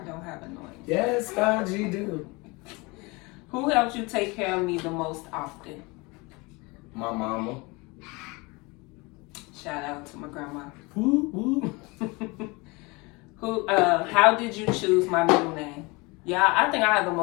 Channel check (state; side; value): quieter; right; 25.9 dB